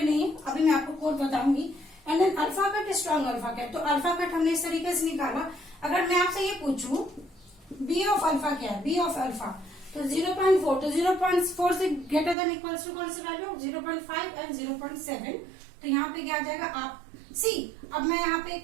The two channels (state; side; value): drops out; left; at 12.4 s